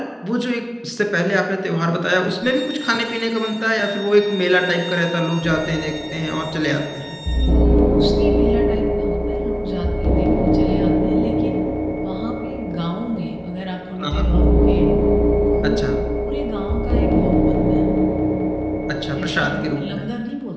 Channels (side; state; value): both; identical; correlation 1.00